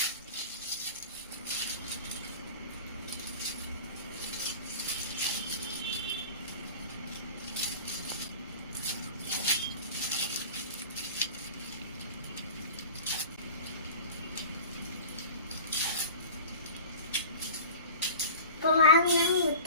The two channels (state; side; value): inverted; both; correlation -0.39